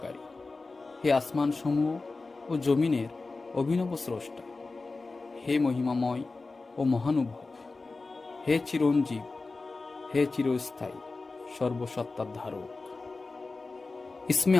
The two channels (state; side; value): quieter; right; 3.7 dB